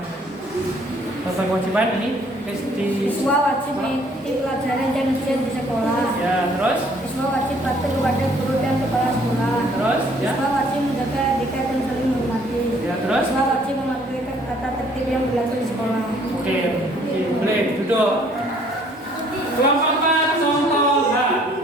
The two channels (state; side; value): normal; both; correlation 0.60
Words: Contoh kewajiban ini di Siswa wajib mengikuti pelajaran dan ujian di sekolah. ya, terus Siswa wajib patuh kepada guru dan kepala sekolah. terus ya. Siswa wajib menjaga etika dan saling menghormati. Ya, terus Siswa wajib mematuhi tata tertib yang berlaku di sekolah. Oke, boleh duduk. Kelompok 4, contoh H.